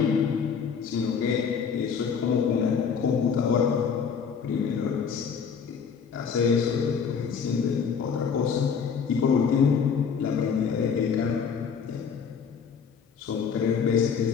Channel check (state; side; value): quieter; right; 6.5 dB